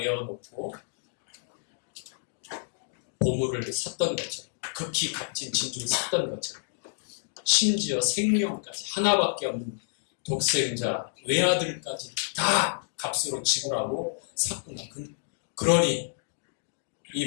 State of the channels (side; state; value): right; silent; digital silence